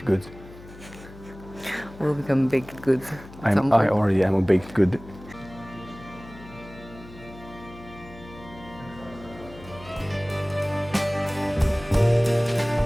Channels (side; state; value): left; noise; hum, 18 dB below the sound